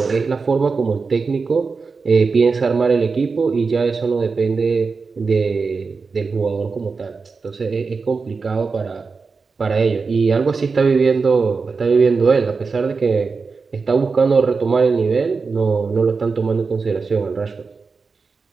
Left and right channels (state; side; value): quieter; left; 4.6 dB